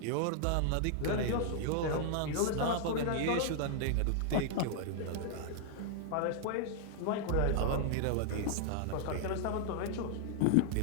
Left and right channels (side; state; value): both; different; correlation -0.01